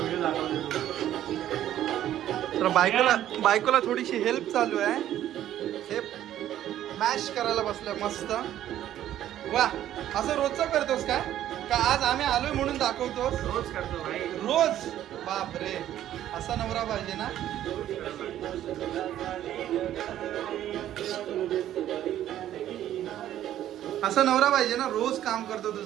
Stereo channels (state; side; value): quieter; left; 12.0 dB